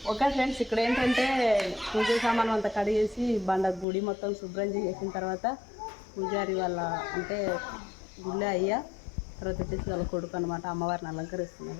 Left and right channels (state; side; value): drops out; right; at 3.9 s